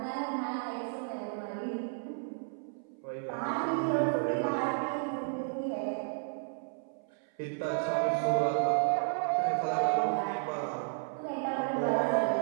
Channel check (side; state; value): left; silent; 56 dB below the other